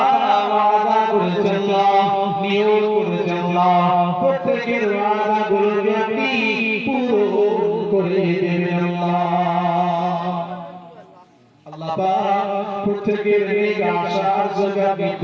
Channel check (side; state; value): both; identical; correlation 1.00